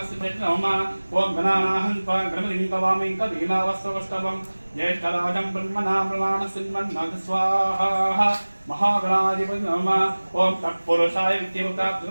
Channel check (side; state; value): both; inverted; correlation -1.00